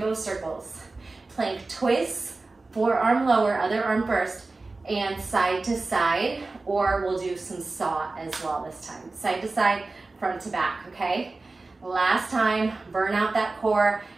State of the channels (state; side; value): quieter; left; 3.4 dB